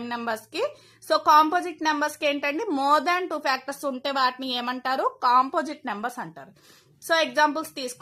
నెంబర్స్ కి. సో కాంపోజిట్ నెంబర్స్ కి ఏంటండి, మోర్ దాన్ 2 ఫ్యాక్టర్స్ ఉంటే వాటిని ఏమంటారు, కాంపోజిట్ నెంబర్స్ అంటారు. సో ఎగ్జాంపుల్స్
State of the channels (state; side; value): identical; both; correlation 1.00